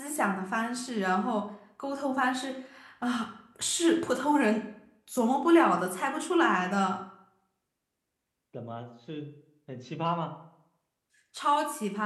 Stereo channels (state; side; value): identical; both; correlation 1.00